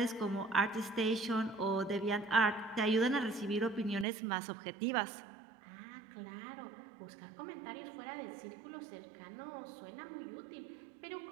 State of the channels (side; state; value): left; drops out; at 4.0 s